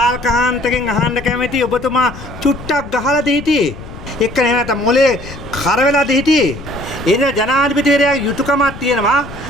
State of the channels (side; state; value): left; noise; rumble, 14 dB below the sound